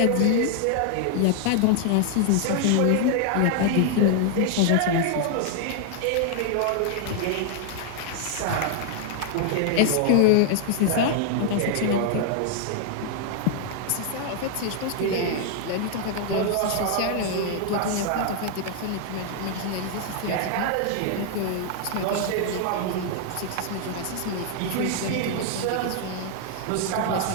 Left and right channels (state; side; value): different; both; correlation 0.00